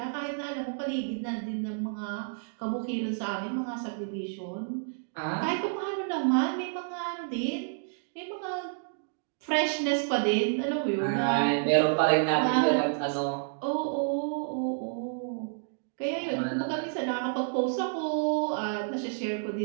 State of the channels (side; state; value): left; silent; digital silence